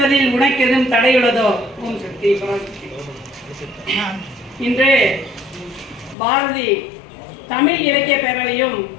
உனக்கு எதுவும் தடையுள்ளதோ? ஓம் சக்தி பராசக்தி. இன்று பாரதி தமிழ் இலக்கிய பேரவையும்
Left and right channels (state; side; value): drops out; right; at 6.2 s